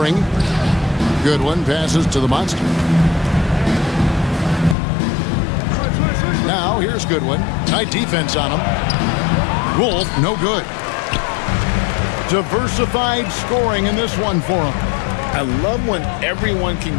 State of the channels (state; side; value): drops out; right; at 4.8 s